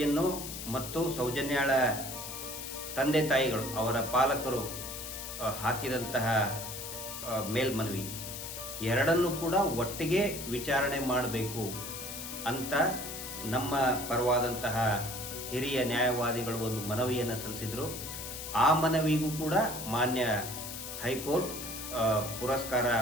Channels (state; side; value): noise; left; hiss, 8 dB below the sound